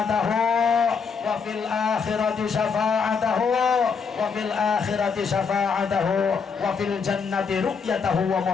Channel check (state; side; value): quieter; right; 5.7 dB